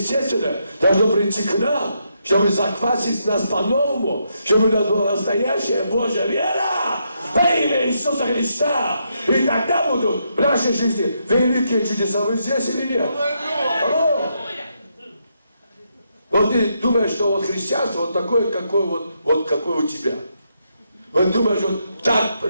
должно прийти к нам, чтобы заквасить нас по-новому, чтобы у нас была настоящая Божья вера во имя Иисуса Христа. И тогда будут в нашей жизни великие чудеса. Вы здесь или нет? Алло. Вот ты думаешь, что вот христианство вот такое, какое у тебя. Вот думаешь, вот так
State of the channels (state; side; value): inverted; both; correlation -0.79